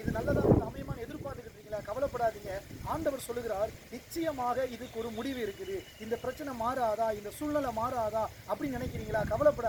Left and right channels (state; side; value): identical; both; correlation 1.00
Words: இது நல்லதாக அமையமான எதிர்பார்த்துக்கிட்டு இருக்கீங்களா? கவலைப்படாதீங்க. ஆண்டவர் சொல்லுகிறார், நிச்சயமாக இதுக்கு ஒரு முடிவு இருக்குது. இந்த பிரச்சனை மாறாதா, இந்த சூழ்நிலை மாறாதா அப்படின்னு நினைக்கிறீங்களா?